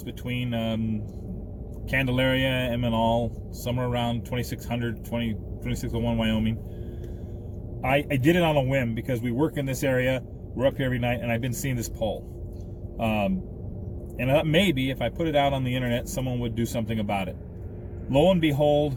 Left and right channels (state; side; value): identical; both; correlation 1.00